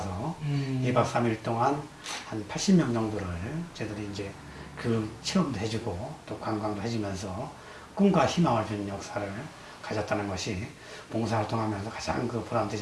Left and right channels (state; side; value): identical; both; correlation 1.00